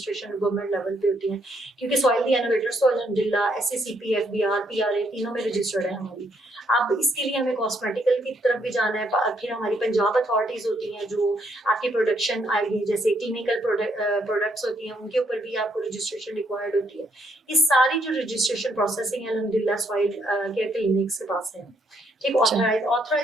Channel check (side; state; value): both; normal; correlation 0.72